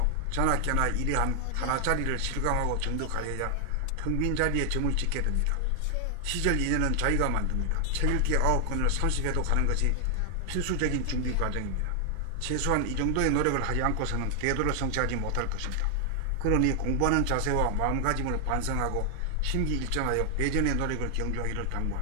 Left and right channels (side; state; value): both; different; correlation 0.00